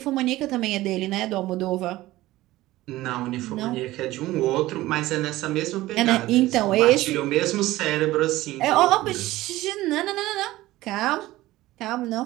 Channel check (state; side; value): quieter; left; 17.1 dB